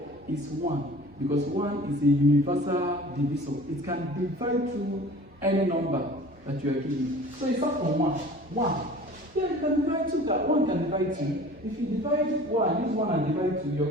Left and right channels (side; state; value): both; normal; correlation 0.44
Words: is 1. Because 1 is a universal divisor. It can divide through any number that you are given. So it's not from 1. 1. Yeah, you can divide 2. That 1 can divide 2. If you divide 1, use 1 and divide 2, you're